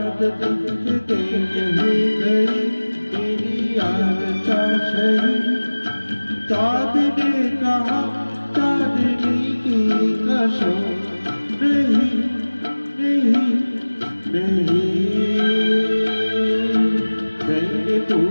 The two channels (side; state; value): both; inverted; correlation -1.00